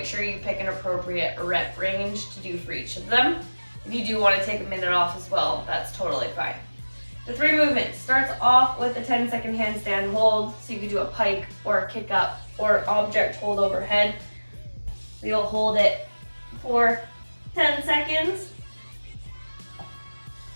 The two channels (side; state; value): both; inverted; correlation -1.00